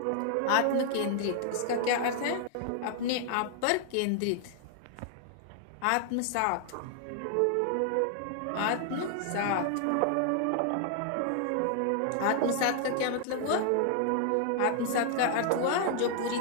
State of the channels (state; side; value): different; both; correlation 0.00